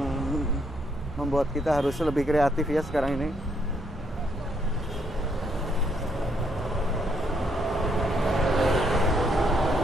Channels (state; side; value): normal; both; correlation 0.73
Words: membuat kita harus lebih kreatif ya sekarang ini.